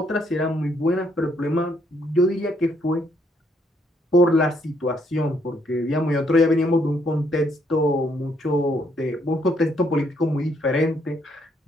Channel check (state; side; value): normal; both; correlation 0.71